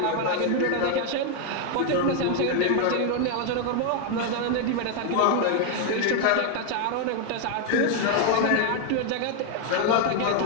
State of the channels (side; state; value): both; different; correlation 0.01